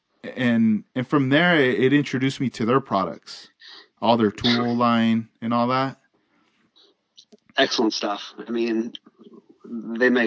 and from there it introduced me to their products, all their tool line and all that. Excellent stuff. I mean, they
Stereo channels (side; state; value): both; identical; correlation 1.00